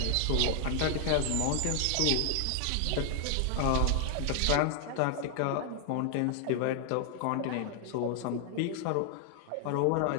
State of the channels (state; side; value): different; both; correlation 0.00